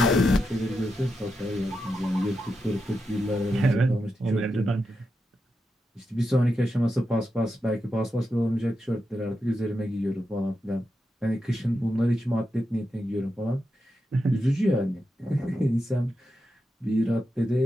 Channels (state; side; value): normal; both; correlation 0.87